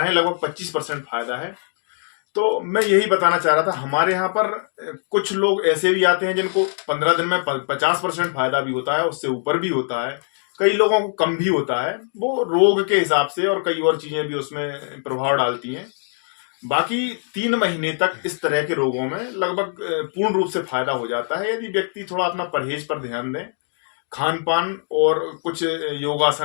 हैं लगभग 25% फायदा है। तो मैं यही बताना चाह रहा था, हमारे यहाँ पर कुछ लोग ऐसे भी आते हैं जिनको 15 दिन में 50% फायदा भी होता है, उससे ऊपर भी होता है, कई लोगों को कम भी होता है। वो रोग के हिसाब से और कई और चीजें भी उसमें प्रभाव डालती हैं। बाकी 3 महीने तक इस तरह के रोगों में लगभग पूर्ण रूप से फायदा हो जाता है यदि व्यक्ति थोड़ा अपना परहेज पर ध्यान दें, खान पान और कुछ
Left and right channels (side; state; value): right; silent; 64 dB below the other